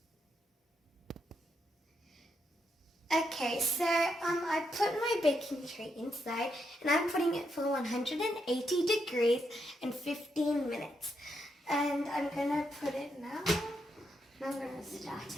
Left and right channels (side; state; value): both; normal; correlation 0.80